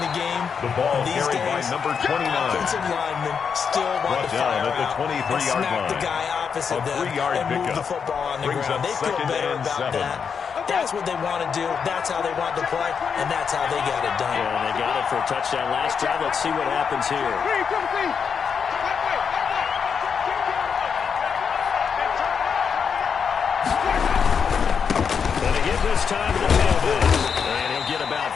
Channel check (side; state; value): right; quieter; 6.5 dB